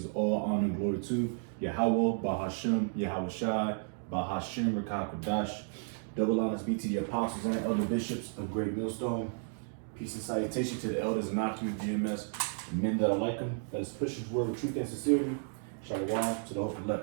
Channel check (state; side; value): silent; left; 56 dB below the other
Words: all honor, and glory to Yahweh, Bahashem, Yahweh Shai, Bahashem, Rakah Kodash. Double honors be to the apostles and elder bishops of Great Millstone. Peace and salutation to the elders and Akim GMS, and men that are like them, that is pushing his word with truth and sincerity. Shalom to the hope